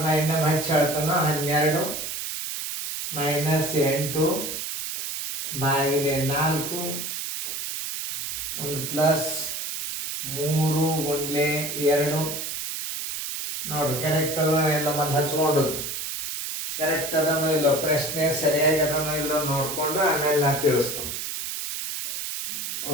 ಇನ್ನೊಮ್ಮೆ ಹಚ್ಚಿ ಹೇಳ್ತಾನೋ 12 -8 ಭಾಗಿಲೆ 4 ಒಂದು ಪ್ಲಸ್ 3 ಗುಂಡ್ಲೆ 2 ನೋಡ್ರಿ. ಕರೆಕ್ಟ್ ಅದ ಇಲ್ಲ ಮತ್ತೆ ಹಚ್ಕೊಂಡದ್ದು ಕರೆಕ್ಟ್ ಅದನೋ ಇಲ್ಲೋ, ಪ್ರಶ್ನೆ ಸರಿಯಾಗಿ ಅದನೋ ಇಲ್ಲೋ ನೋಡಿಕೊಂಡು ಆಮೇಲೆ ನಾ ತಿಳಿಸ್ತೀನಿ.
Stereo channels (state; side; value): noise; right; hiss, 5 dB below the sound